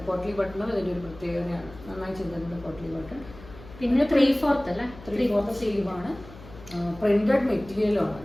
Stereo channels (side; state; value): left; noise; hum, 18 dB below the sound